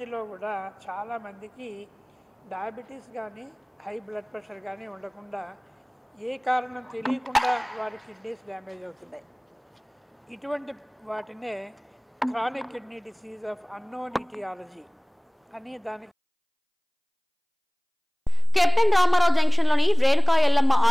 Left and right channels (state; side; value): identical; both; correlation 1.00